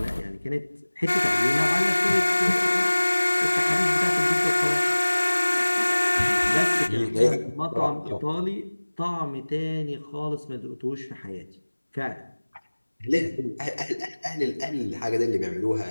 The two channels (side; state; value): both; inverted; correlation -1.00